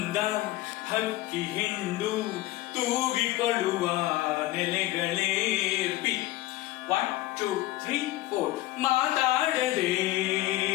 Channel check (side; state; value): right; quieter; 17.0 dB